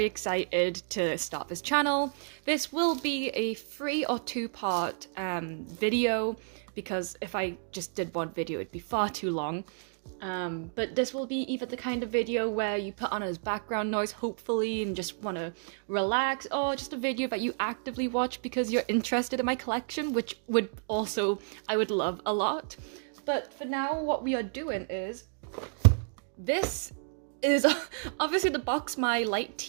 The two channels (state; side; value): silent; left; digital silence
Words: excited to start this channel. This will be a 3 or 2-part video, because if I just did one video it'd be far too long. But this will be either the kind of video where you put on as background noise, hopefully, and just want to relax, or just a video that you actively watch because you're interested in my collection, which I would love a lot. But for now, what we are doing is, this is obviously the box my light